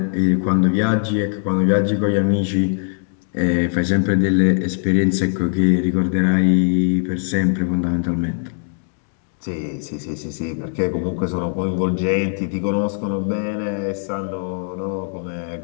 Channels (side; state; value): right; silent; 65 dB below the other